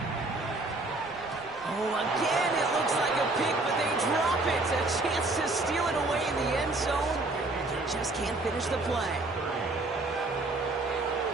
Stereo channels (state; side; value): quieter; left; 3.0 dB